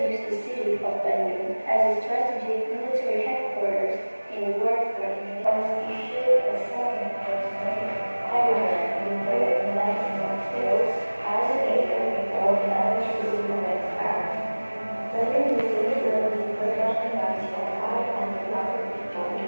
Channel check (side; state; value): both; inverted; correlation -1.00